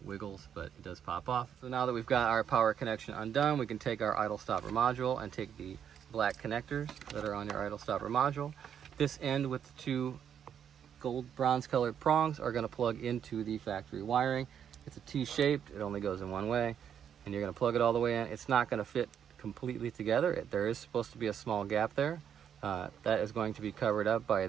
wiggles, but it does pop off. So now that we've got our power connection undone, we can take our idle stopper module and take the black connectors that are on your idle stopper module. This end with the two gold bronze colored prongs are going to plug into the factory wiring. It's a T-shaped, it only goes in one way, and you're going to plug it all the way in. It's not going to fit completely together. There is supposed to be a small gap there. That is going to be covered up by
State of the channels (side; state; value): left; quieter; 8.6 dB